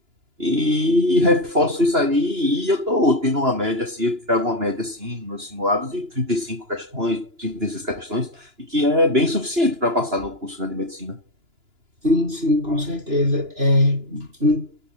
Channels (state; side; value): late; left; 2.9 ms